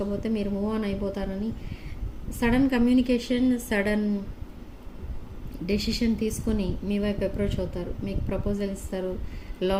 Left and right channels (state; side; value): identical; both; correlation 1.00